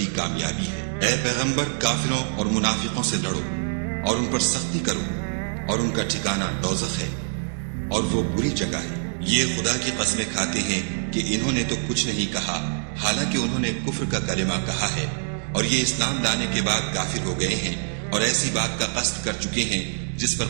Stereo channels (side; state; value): left; silent; 62 dB below the other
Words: کامیابی ہے۔ اے پیغمبر، کافروں اور منافقوں سے لڑو اور ان پر سختی کرو، اور ان کا ٹھکانہ دوزخ ہے، اور وہ بری جگہ ہے۔ یہ خدا کی قسمیں کھاتے ہیں کہ انہوں نے تو کچھ نہیں کہا، حالانکہ انہوں نے کفر کا کلمہ کہا ہے، اور یہ اسلام لانے کے بعد کافر ہو گئے ہیں، اور ایسی بات کا قصد کر چکے ہیں جس پر